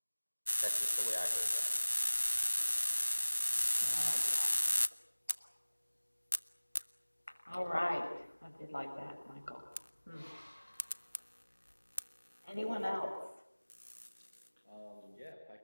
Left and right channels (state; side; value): inverted; both; correlation -1.00